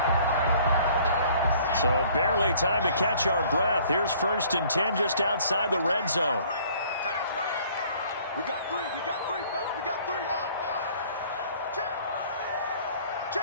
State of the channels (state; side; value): inverted; both; correlation -0.56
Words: So barely time to catch our breath. Here's 1st and 10 just outside the red zone. We got three, fellas. We got three.